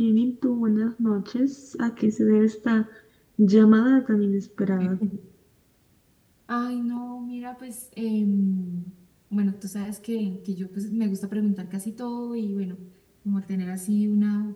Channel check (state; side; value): identical; both; correlation 1.00